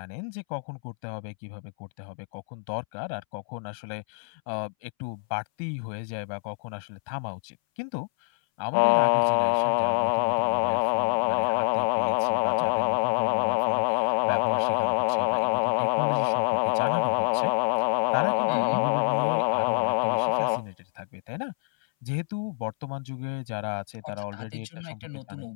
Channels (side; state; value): right; silent; 60 dB below the other